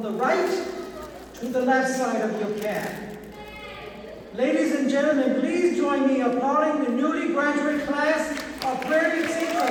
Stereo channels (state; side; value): identical; both; correlation 1.00